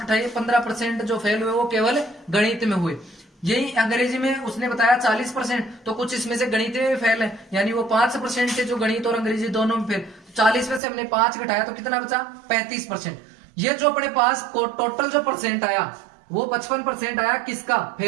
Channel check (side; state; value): left; drops out; at 10.8 s